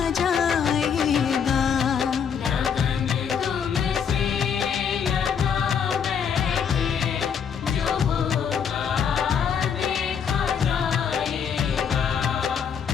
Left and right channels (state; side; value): quieter; right; 7.2 dB